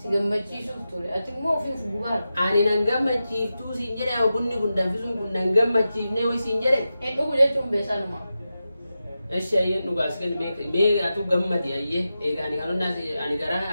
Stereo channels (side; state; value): both; inverted; correlation -0.91